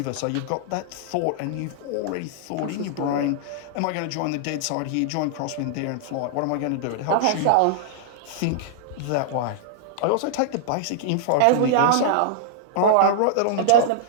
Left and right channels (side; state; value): both; different; correlation -0.01